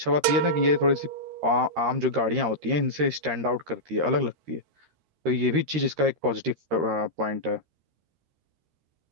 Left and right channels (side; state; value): left; late; 13 ms